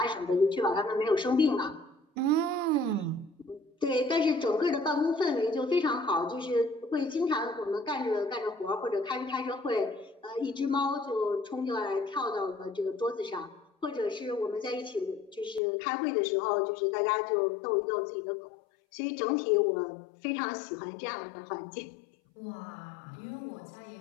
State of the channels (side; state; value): right; drops out; at 15.6 s